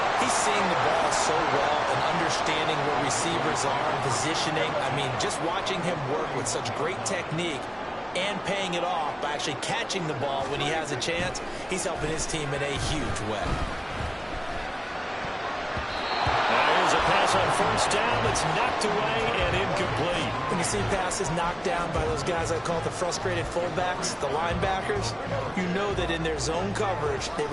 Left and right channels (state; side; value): identical; both; correlation 1.00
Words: He's seeing the ball so well and understanding where receivers are and positioning. I mean, just watching him work with such great technique and paying it off by actually catching the ball when he has a chance, he's helping his team in a huge way. Here's a pass on first down that's knocked away and incomplete. When you see passes knocked down by those guys I call the frustrated fullbacks, the linebackers, you know that in their zone coverage, they